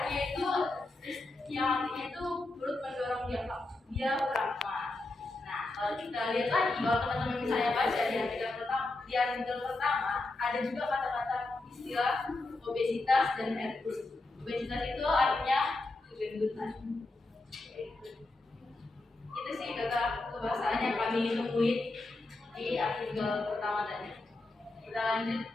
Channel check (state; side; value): quieter; right; 3.0 dB